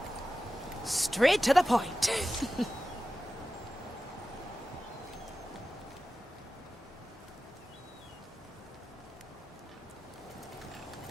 Straight to the point.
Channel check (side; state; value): both; normal; correlation 0.94